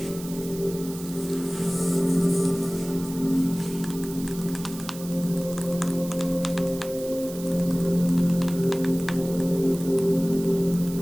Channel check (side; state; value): right; noise; hiss, 15 dB below the sound